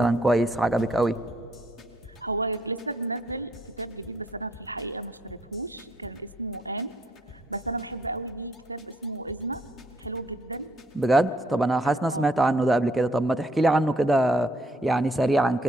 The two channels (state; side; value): normal; both; correlation 0.68